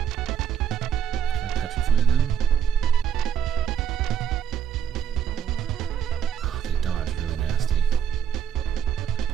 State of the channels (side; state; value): left; quieter; 8.4 dB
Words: Can I petrify them? Oh, they dodge really nasty.